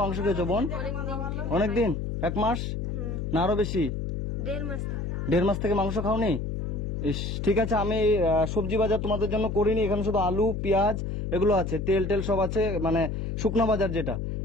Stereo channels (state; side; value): noise; left; hum, 3 dB below the sound